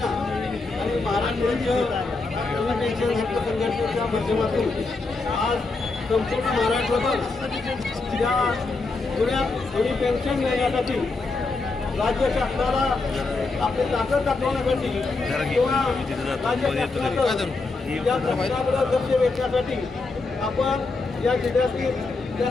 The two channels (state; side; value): quieter; right; 3.7 dB